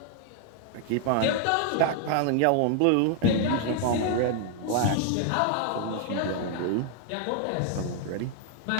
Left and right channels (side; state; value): both; different; correlation 0.00